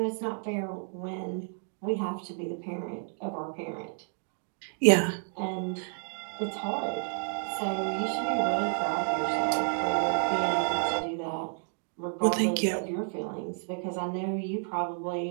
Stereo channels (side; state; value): left; silent; 57 dB below the other